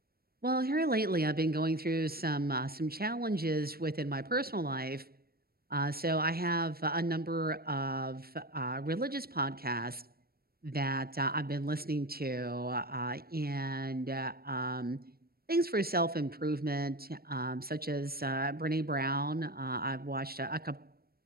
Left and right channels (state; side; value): late; left; 0.44 ms